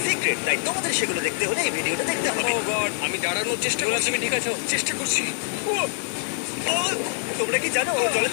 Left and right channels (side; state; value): right; silent; digital silence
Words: সিক্রেট, তাই তোমাদের সেগুলো দেখতে হলে এই ভিডিওটা দেখতে হবে। ও গড, আমি দাঁড়ানোর চেষ্টা করছি। তুমি ঠিক আছো? চেষ্টা করছি। ও, তোমরা কি জানো জলে